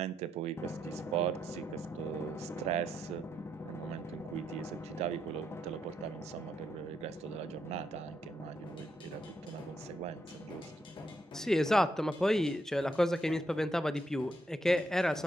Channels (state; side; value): normal; both; correlation 0.79